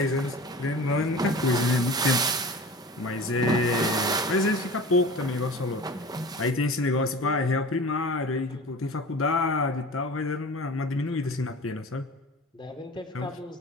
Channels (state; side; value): normal; both; correlation 0.37